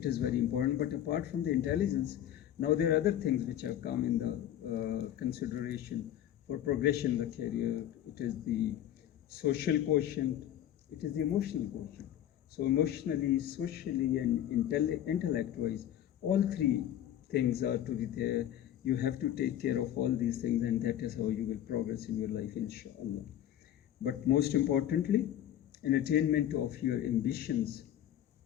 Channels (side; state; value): right; quieter; 11.4 dB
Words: is very important. But apart from the intelligence, now there are other things which have come in the consideration for progression in the career. It is the social quotient, it is the emotional quotient. So emotionally, socially, and intellect-wise, all three things are to be there. You have to take care of all these things, and that is how you will progress in your life, inshallah. But most importantly, in attainment of your ambitions,